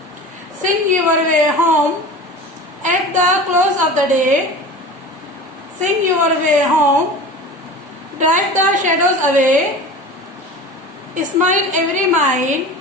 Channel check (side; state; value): both; normal; correlation 0.35